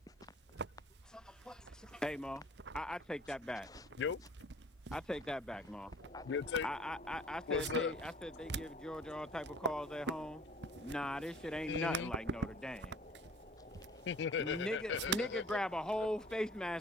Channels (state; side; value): normal; both; correlation 0.50